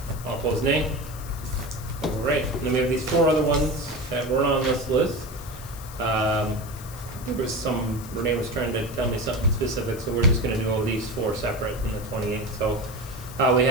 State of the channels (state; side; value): noise; left; hiss, 17 dB below the sound